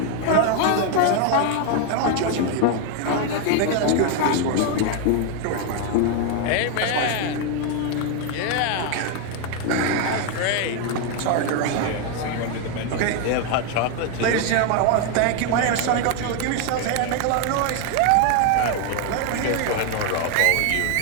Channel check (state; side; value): different; both; correlation 0.01